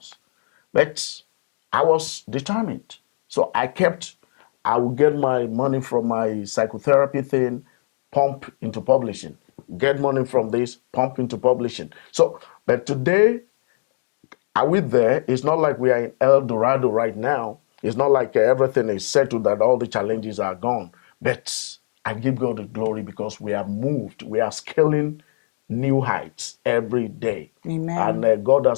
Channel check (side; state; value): right; silent; digital silence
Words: But I was determined. So I would get my money from my psychotherapy thing, pump into publishing. Get money from this, pump into publishing. So, but today, are we there? It's not like we are in El Dorado right now. It's not like everything is settled, that all the challenges are gone. But I give God the glory because we have moved. We are scaling new heights every day. Amen. And God